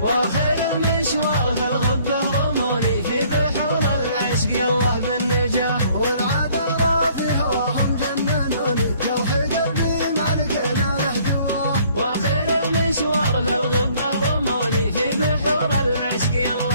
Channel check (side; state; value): both; inverted; correlation -0.59